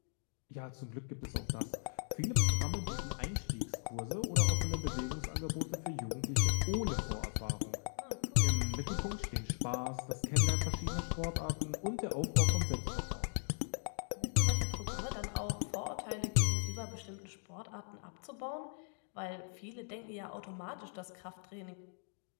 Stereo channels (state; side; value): silent; right; 53 dB below the other